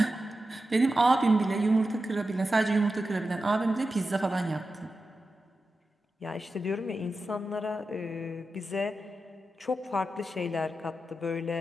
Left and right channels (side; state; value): both; normal; correlation 0.91